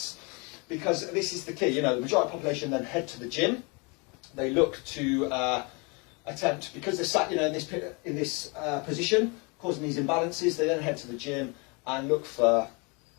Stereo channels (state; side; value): quieter; right; 30.6 dB